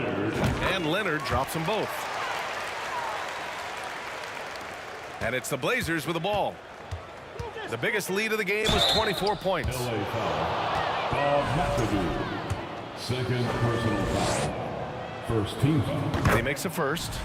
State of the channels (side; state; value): both; identical; correlation 1.00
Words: And Leonard drops them both. And it's the Blazers with the ball. The biggest lead of the game was 24 points. LA foul. Bob McAdoo. Second personal foul. First team foul. And he makes a first.